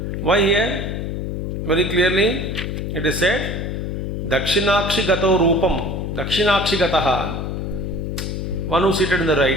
Why here? Very clearly it is said, Dakshinakshi gato rupam, Dakshinakshi gataha, one who seated in the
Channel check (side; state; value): left; noise; hum, 3 dB below the sound